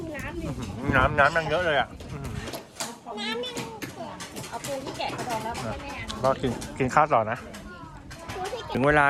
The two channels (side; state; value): both; identical; correlation 1.00